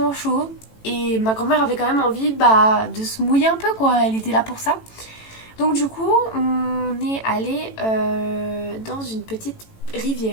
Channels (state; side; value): late; right; 18 ms